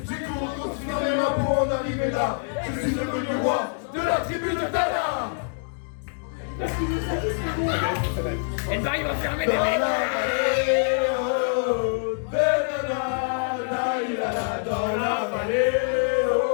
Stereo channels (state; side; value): silent; right; digital silence